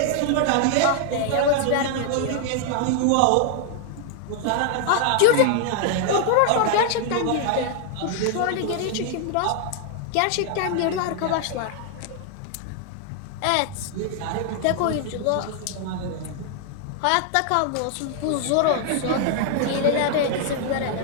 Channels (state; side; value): different; both; correlation 0.00